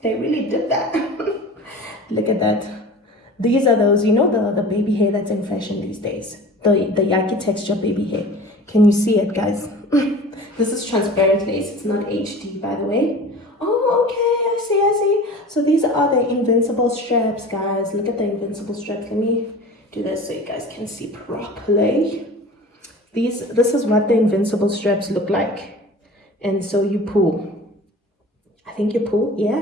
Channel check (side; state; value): both; normal; correlation 0.39